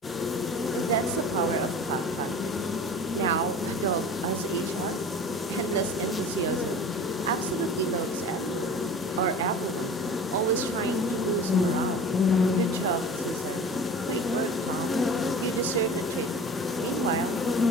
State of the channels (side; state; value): both; normal; correlation 0.39